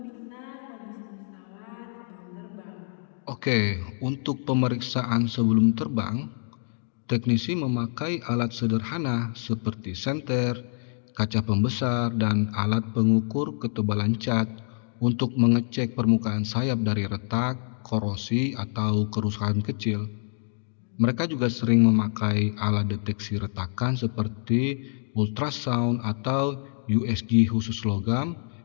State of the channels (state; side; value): silent; right; digital silence